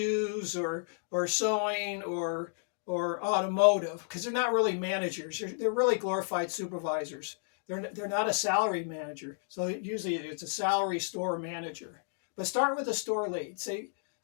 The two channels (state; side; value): silent; right; digital silence